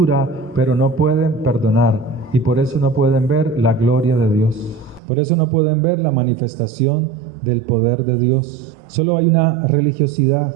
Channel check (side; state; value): left; drops out; at 5.0 s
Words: pero no pueden perdonar, y por eso no pueden ver la gloria de Dios. Por eso no pueden ver la manifestación del poder de Dios. Solo hay una religiosidad.